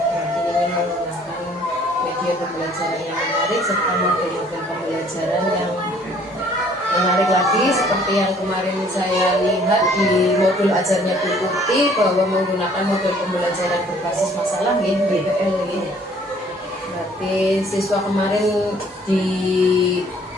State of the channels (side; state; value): both; normal; correlation 0.58